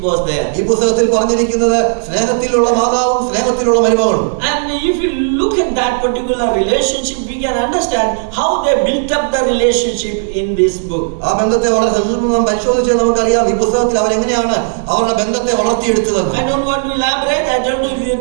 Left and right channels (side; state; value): left; silent; digital silence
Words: was there. ഈ പുസ്തകത്തിൽ പറഞ്ഞിരിക്കുന്നത് സ്നേഹത്തിലുള്ള മാതാവും സ്നേഹത്തിലുള്ള മരുമകളും. And if you look at that particular relationship, we can understand how they built up the relationship in this book. ആ ബന്ധത്തെ വളരെ സൂക്ഷ്മമായി പരിശോധിച്ചാൽ നമുക്കറിയാം ഈ പുസ്തകത്തിൽ അവരെങ്ങനെയാണ് അവരുടെ ബന്ധത്തെ വളർത്തിയെടുത്തത്. I don't want to elaborate. I don't